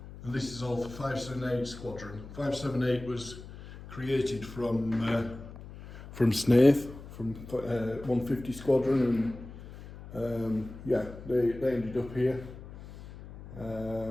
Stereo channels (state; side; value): noise; left; hum, 15 dB below the sound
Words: And this is all for 578 Squadron. 578 was created from Snaith, from 150 Squadron, and yeah, they ended up here.